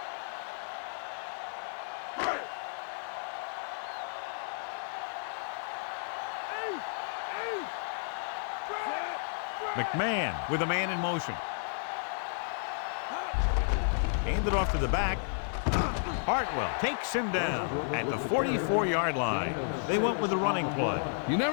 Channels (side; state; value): right; silent; digital silence